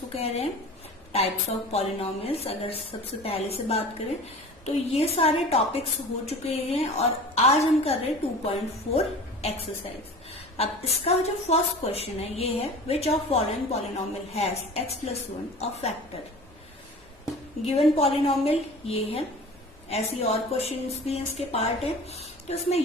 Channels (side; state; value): both; normal; correlation 0.39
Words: कह रहे हैं, टाइप्स ऑफ पॉलिनोमियल्स। अगर सबसे पहले से बात करें तो ये सारे टॉपिक्स हो चुके हैं और आज हम कर रहे हैं 2.4 एक्सरसाइज। अब इसका जो फर्स्ट क्वेश्चन है ये है, which of following polynomial has x+1 a factor. Given polynomial ये है, ऐसी और क्वेश्चंस भी इसके पार्ट है। तो इसमें